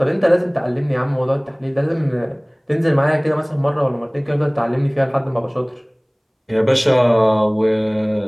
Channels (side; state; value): both; identical; correlation 1.00